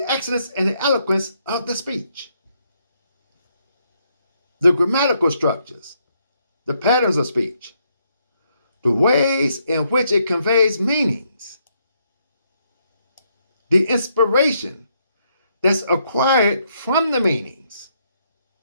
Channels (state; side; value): inverted; both; correlation -0.75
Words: excellence and the eloquence of the speech. The grammatical structures, the patterns of speech, the ways in which it conveys meanings, the inspiration that's acquired from the meanings.